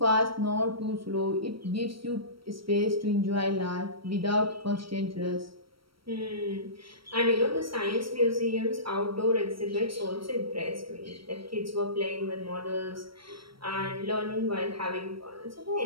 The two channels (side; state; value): left; late; 0.75 ms